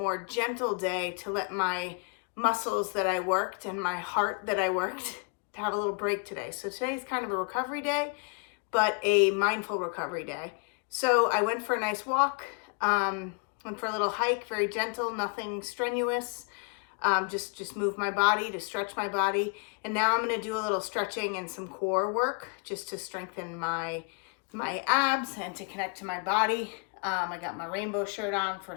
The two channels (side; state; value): right; quieter; 37.9 dB